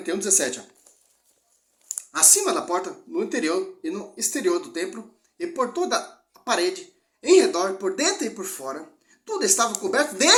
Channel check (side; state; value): both; identical; correlation 1.00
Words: 17. Ó. Acima da porta, no interior e no exterior do templo, e por toda a parede, em redor, por dentro e por fora, tudo estava coberto de